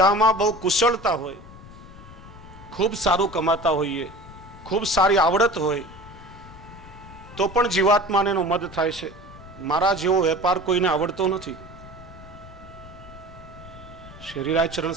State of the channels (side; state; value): left; noise; rumble, 18 dB below the sound